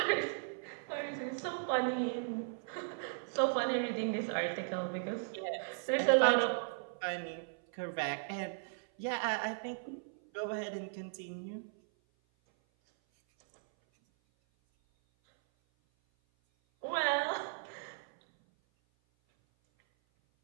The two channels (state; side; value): silent; left; 53 dB below the other